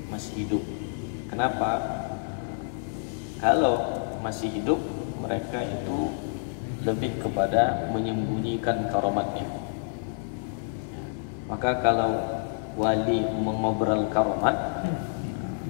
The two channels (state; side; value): silent; right; 59 dB below the other